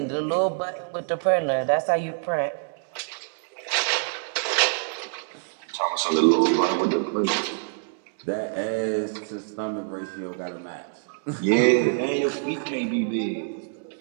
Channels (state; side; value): silent; left; digital silence